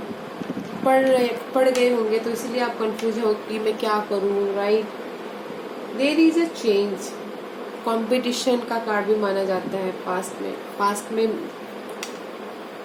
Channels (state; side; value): identical; both; correlation 1.00